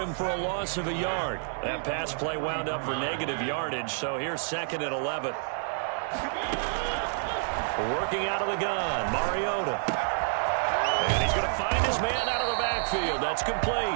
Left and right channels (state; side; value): silent; left; digital silence